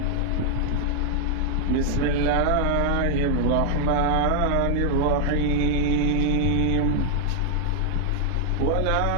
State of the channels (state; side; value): different; both; correlation 0.00